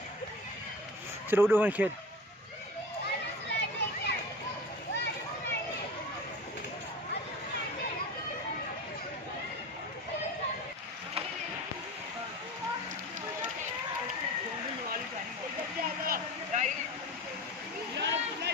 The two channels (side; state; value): both; normal; correlation 0.32